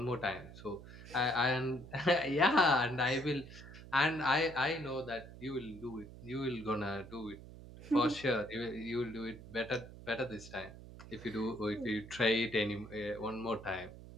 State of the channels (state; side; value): noise; right; hum, 15 dB below the sound